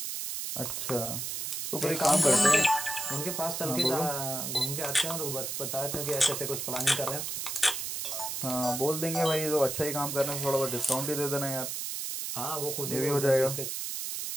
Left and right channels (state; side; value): noise; right; hiss, 4 dB below the sound